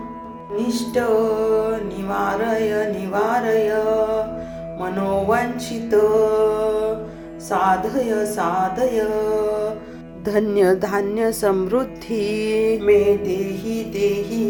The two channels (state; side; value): identical; both; correlation 1.00